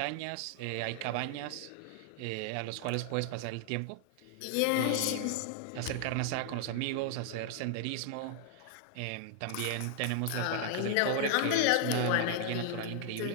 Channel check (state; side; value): different; both; correlation 0.00